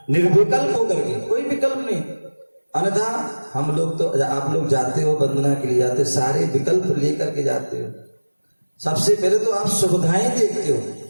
निर्विकल्प होकर के, कोई विकल्प नहीं। अन्यथा हम लोग तो, आप लोग जाते हो वंदना के लिए, जाते सारे विकल्प लेकर के जाते हो। सबसे पहले तो आप सुविधाएं देखते हो,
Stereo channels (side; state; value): both; inverted; correlation -1.00